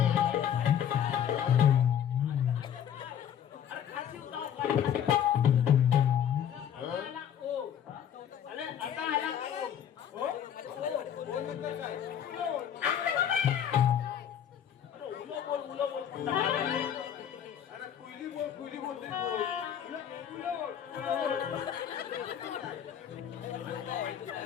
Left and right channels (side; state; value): right; quieter; 9.2 dB